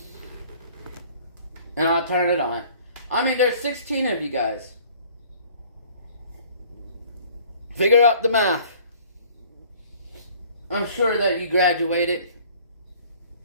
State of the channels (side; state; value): both; inverted; correlation -0.53